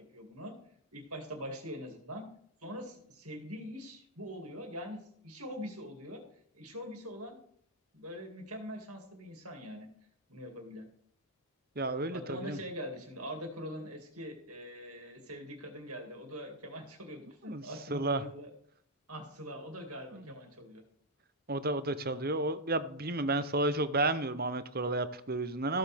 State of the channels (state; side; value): normal; both; correlation -0.03